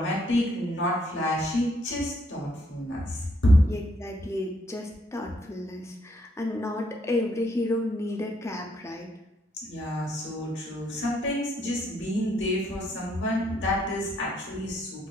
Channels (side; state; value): both; normal; correlation 0.71